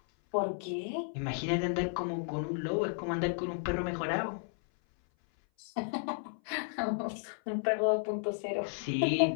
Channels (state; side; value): silent; right; 56 dB below the other